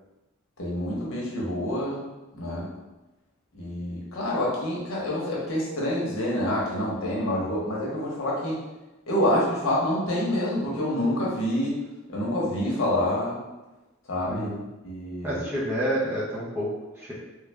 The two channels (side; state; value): both; normal; correlation 0.30